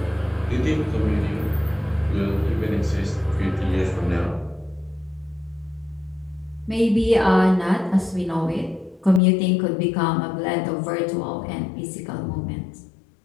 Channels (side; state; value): right; drops out; at 9.2 s